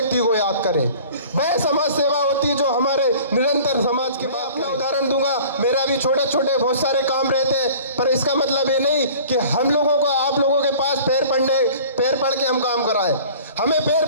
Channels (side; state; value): both; inverted; correlation -0.45